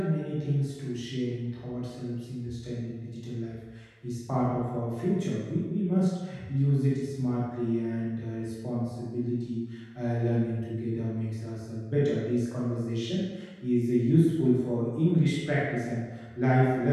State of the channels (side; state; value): both; identical; correlation 1.00